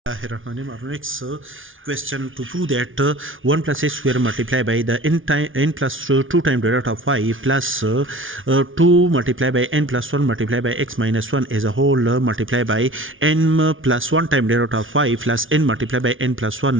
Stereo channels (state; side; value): late; left; 0.57 ms